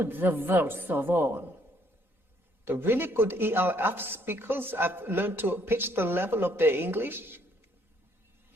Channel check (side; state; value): right; late; 3.9 ms